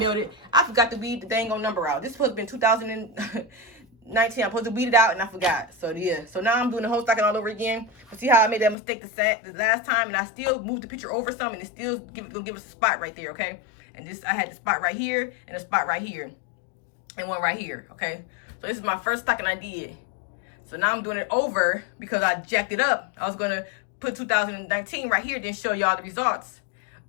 I forgot to weed the dang on number out. This was been I'm supposed to weed it out, and I forgot. So yeah, so now I'm doing the whole stocking all over again. But see how I made that mistake the last time, and I still moved the picture over some, and it still gonna give us a spot right there, okay? And this, I had the spot right here, and a spot right here, and one right here, okay? So this is my first stocking I did. So now I'm doing it over because I jacked it up. I was gonna put 2019 right here, then show y'all the results,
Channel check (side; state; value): right; drops out; at 8.8 s